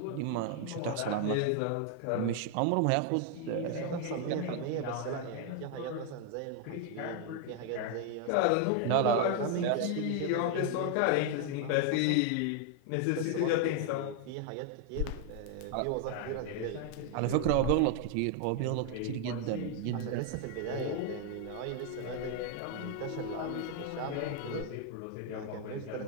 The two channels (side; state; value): both; different; correlation 0.00